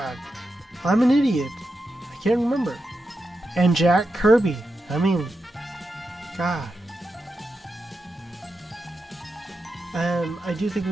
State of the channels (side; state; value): both; normal; correlation 0.88